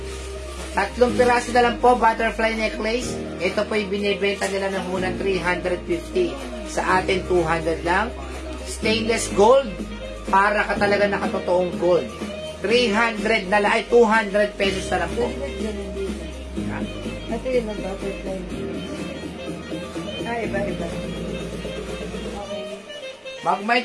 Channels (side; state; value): both; identical; correlation 1.00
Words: 3 piraso na lang po, butterfly necklace. Ito po yung binibenta nila ng unang 350. Sa atin, 200 lang. Stainless gold. Para ka talaga nakatotoong gold. 300 na lang. Ay, 200 pesos na lang po. ha? Ito yun ang butterfly necklace. Iba. Okay. Mag-mind